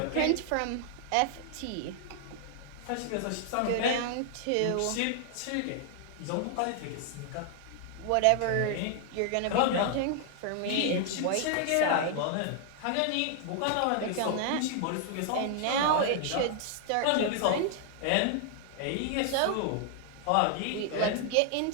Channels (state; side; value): different; both; correlation 0.00